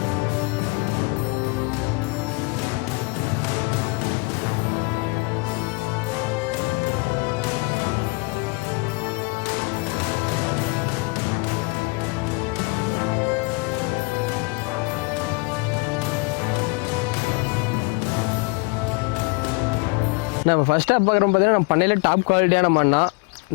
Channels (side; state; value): right; quieter; 28.8 dB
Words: நம்ம ஃபர்ஸ்ட் டாப் பார்க்குறோம் பார்த்தீங்கன்னா நம்ம பண்ணையில் டாப் குவாலிட்டியான மண்ணா.